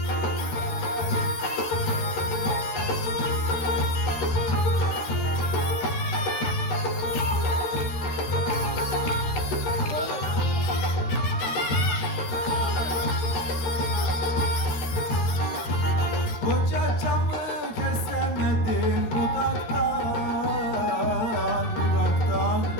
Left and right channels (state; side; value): late; right; 13 ms